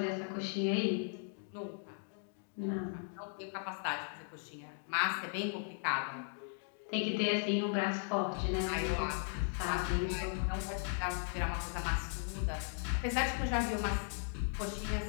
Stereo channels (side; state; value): right; silent; 53 dB below the other